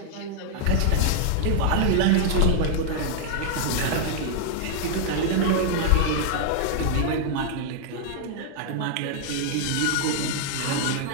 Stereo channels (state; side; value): different; both; correlation 0.00